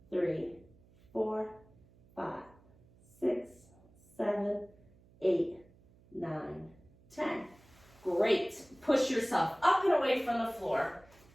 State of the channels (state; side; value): noise; right; hum, 28 dB below the sound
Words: 3, 4, 5, 6, 7, 8, 9, 10. Great. Push yourself up and away from the floor.